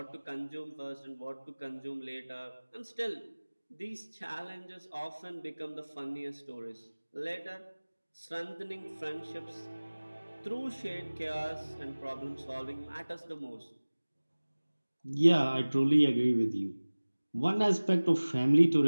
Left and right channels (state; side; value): inverted; both; correlation -1.00